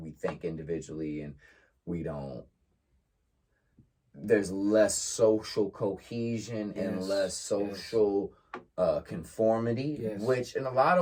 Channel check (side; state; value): both; identical; correlation 1.00